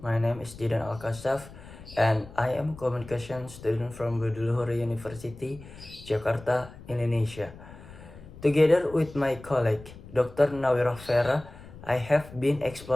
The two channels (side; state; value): left; noise; rumble, 17 dB below the sound